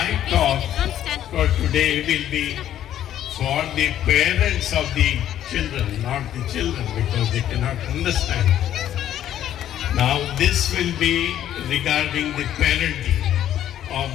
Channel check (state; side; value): quieter; right; 11.4 dB